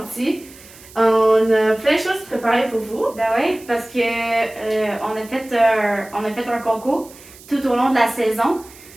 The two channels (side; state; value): right; noise; hiss, 21 dB below the sound